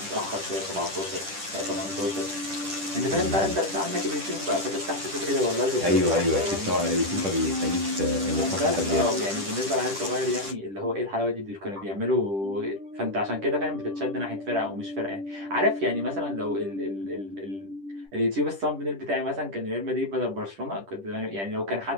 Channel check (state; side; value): late; left; 10 ms